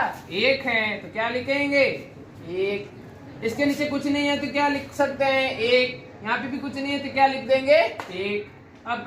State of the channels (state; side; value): identical; both; correlation 1.00